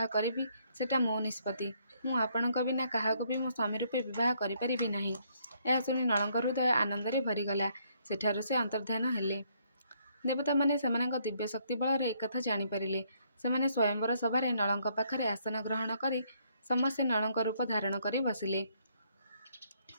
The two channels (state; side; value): inverted; both; correlation -0.70